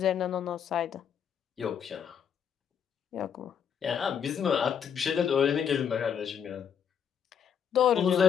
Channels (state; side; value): quieter; right; 8.0 dB